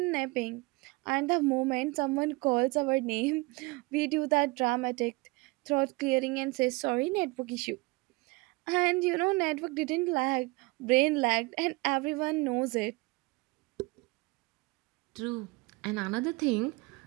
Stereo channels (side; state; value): left; quieter; 24.7 dB